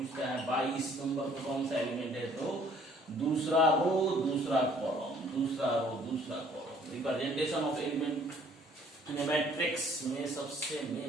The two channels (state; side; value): normal; both; correlation 0.59